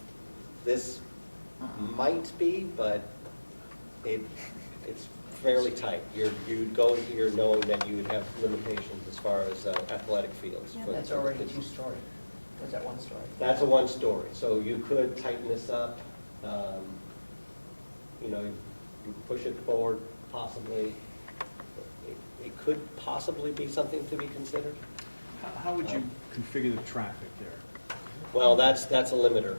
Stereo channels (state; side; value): inverted; both; correlation -1.00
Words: This might be, but it's fairly tight. You'd go here knowing that you would have limitations as far as athletic fields. for That's the already kids. two-story. Was that one story? That's a one-story, so you could tighten this up, you know, you push it forward possibly. It could possibly be something to be considered. How would you configure the traffic there? Well, that's a limiter